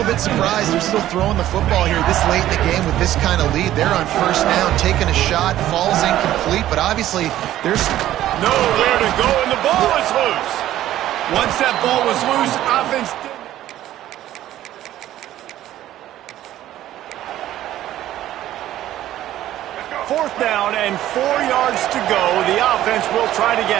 bit surprised they're still throwing the football here this late in the game with this kind of lead. They're on 1st down, taking a shot, falls incomplete, but obviously there's nowhere to go, and the ball is loose. Once that ball was loose, offense didn't. 4th down and 4 yards to go. The offense will try to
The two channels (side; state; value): left; quieter; 13.3 dB